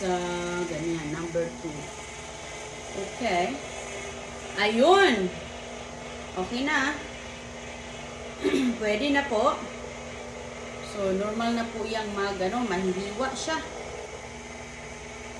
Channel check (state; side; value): identical; both; correlation 1.00